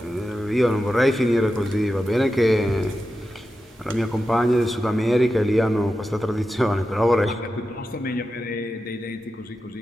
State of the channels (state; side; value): normal; both; correlation 0.91